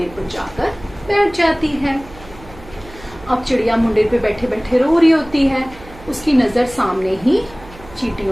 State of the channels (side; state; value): right; noise; hum, 20 dB below the sound